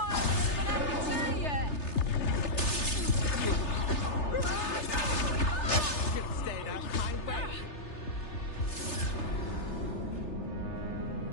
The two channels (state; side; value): late; right; 3.3 ms